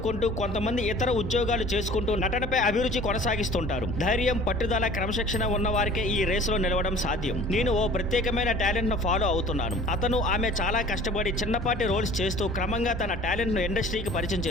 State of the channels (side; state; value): both; normal; correlation 0.47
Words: కొంతమంది ఇతర ఉద్యోగాలు చేసుకుంటూ నటనపై అభిరుచి కొనసాగిస్తుంటారు. ధైర్యం, పట్టుదల, క్రమశిక్షణ ఉన్న వారికే ఈ రేసులో నిలవడం సాధ్యం. నేను ఓ ప్రత్యేకమైన టాలెంట్ ను ఫాలో అవుతున్నాను. అతను, ఆమె చాలా కష్టపడి చిన్నపాటి రోల్స్ చేస్తూ క్రమంగా తన టాలెంట్ ను ఇండస్ట్రీకి పరిచయం